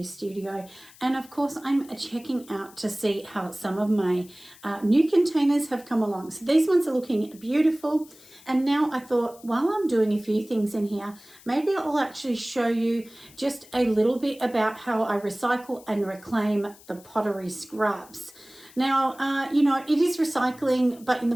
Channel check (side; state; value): left; noise; hiss, 23 dB below the sound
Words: studio, and of course I'm checking out to see how some of my new containers have come along. So these ones are looking beautiful, and now I thought while I'm doing a few things in here, maybe I'll actually show you just a little bit about how I recycle and reclaim the pottery scraps. Now, it is recycling, but in the